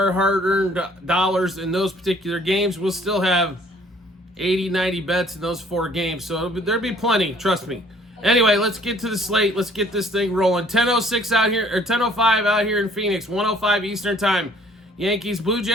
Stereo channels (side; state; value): both; normal; correlation 0.58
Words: hard-earned dollars in those particular games. We'll still have 80, 90 bets in those 4 games, so there'll be plenty, trust me. Anyway, let's get to the slate. Let's get this thing rolling. 10:06 out here, or 10:05 out here in Phoenix, 1:05 Eastern Time. Yankees, Blue